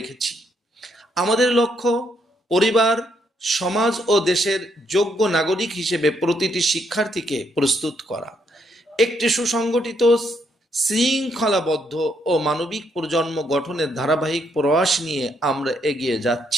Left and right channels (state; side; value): normal; both; correlation 0.74